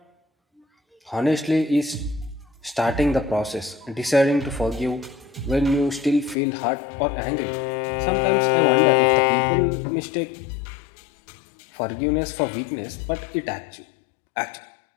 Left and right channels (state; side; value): drops out; right; at 6.4 s